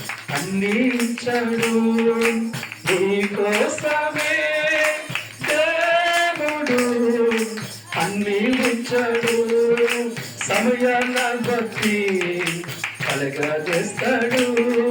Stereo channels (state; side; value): identical; both; correlation 1.00